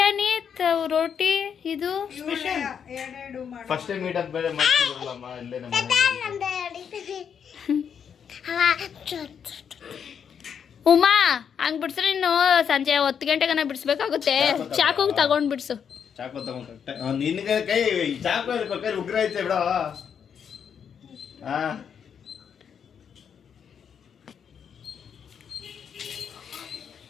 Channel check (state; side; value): quieter; right; 7.5 dB